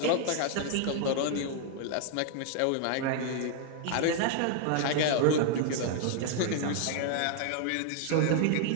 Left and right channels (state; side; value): different; both; correlation 0.00